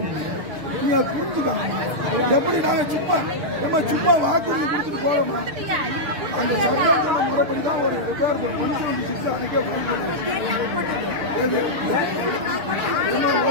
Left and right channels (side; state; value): left; late; 6.7 ms